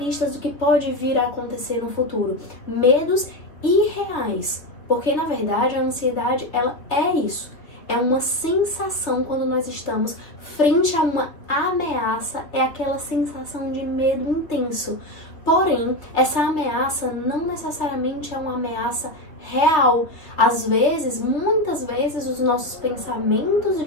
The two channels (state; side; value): late; right; 3.2 ms